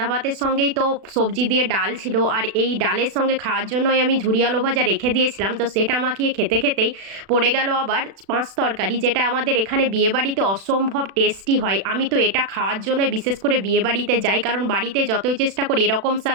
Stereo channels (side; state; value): left; late; 36 ms